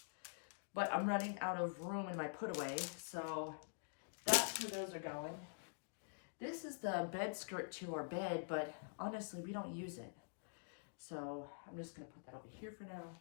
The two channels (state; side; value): silent; right; digital silence